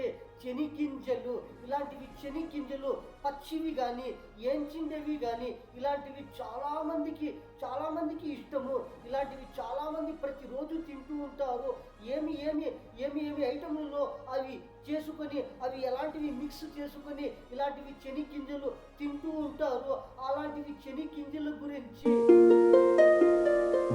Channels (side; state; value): both; identical; correlation 1.00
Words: చెనిగింజలు. ఇలాంటివి చెనిగింజలు పచ్చివి కానీ ఏంచిండేవి కానీ ఇలాంటివి చాలామందికి ఇష్టము. ఇలాంటివి చాలామంది ప్రతిరోజు తింటూ ఉంటారు. ఏమి ఐటములలో అవి చేసుకొని అవి ఎలాంటివి మిక్స్ చేసుకొని ఇలాంటివి చెనిగింజలు తింటూ ఉంటారు. అలాంటివి చెనిగింజల గురించి,